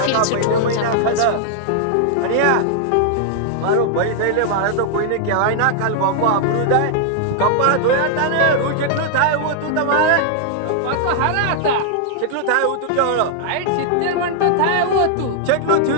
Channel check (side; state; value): both; different; correlation -0.01